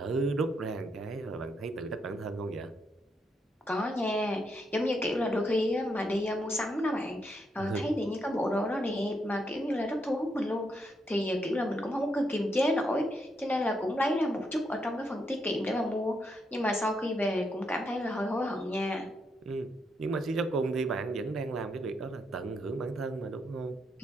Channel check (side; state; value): both; normal; correlation 0.79